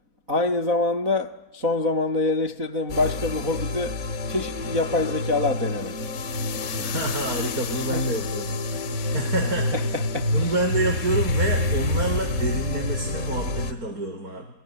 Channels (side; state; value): left; late; 4.2 ms